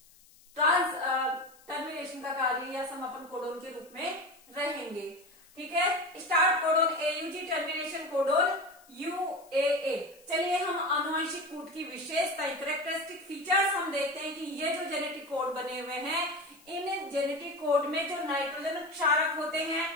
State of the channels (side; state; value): left; noise; hiss, 27 dB below the sound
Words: टर्मिनेशन का कार्य या समापन कोडोन के रूप में रहेंगे। ठीक है, start codon AUG, termination codon यूएए। चलिए हम आनुवंशिक कूट की विशेषताएं, कैरेक्टरिस्टिक फीचर्स हम देखते हैं कि ये जो जेनेटिक कोड बने हुए हैं, इन जेनेटिक कोड में जो नाइट्रोजन क्षारक होते हैं